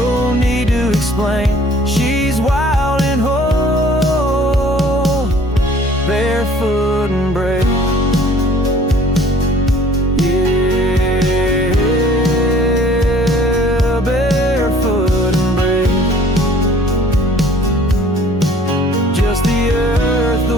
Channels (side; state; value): both; normal; correlation 0.54